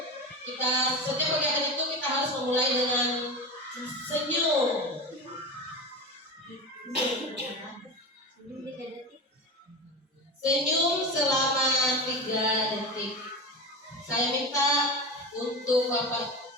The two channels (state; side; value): normal; both; correlation 0.25